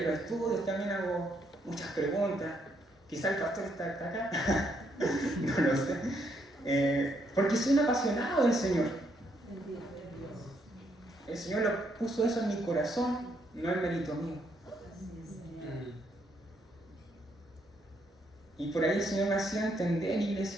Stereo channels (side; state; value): both; normal; correlation 0.74